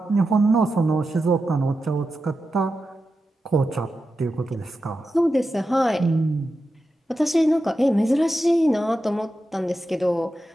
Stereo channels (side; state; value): both; normal; correlation 0.90